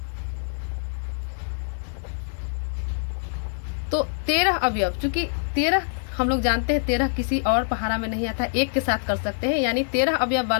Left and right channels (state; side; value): silent; right; digital silence